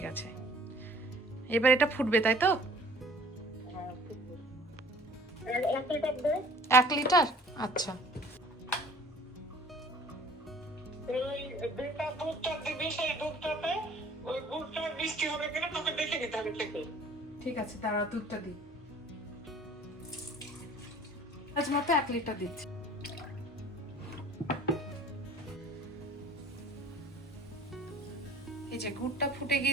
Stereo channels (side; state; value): both; normal; correlation 0.51